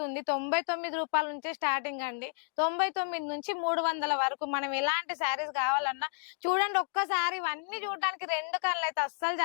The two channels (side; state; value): right; silent; digital silence